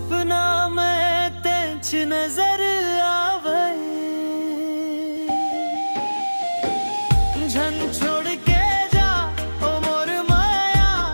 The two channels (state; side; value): inverted; both; correlation -1.00